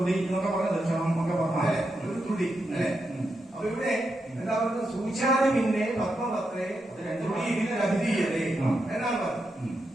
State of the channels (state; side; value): normal; both; correlation 0.85